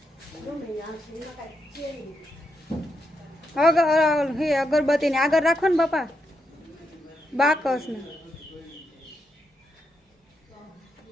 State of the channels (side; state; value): both; normal; correlation 0.83